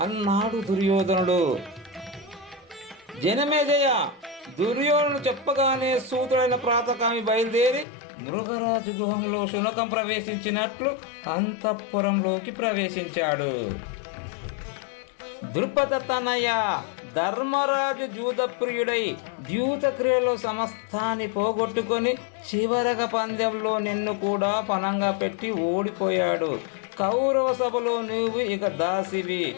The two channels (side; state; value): right; drops out; at 7.9 s